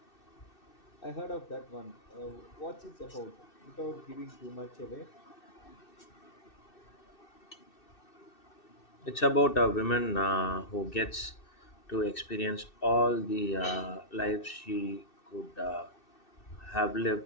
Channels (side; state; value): right; late; 2.6 ms